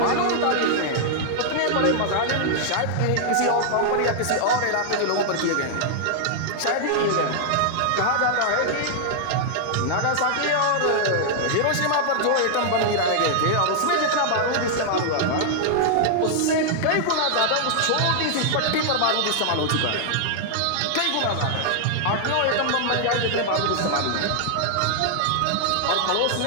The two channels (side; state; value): both; different; correlation -0.01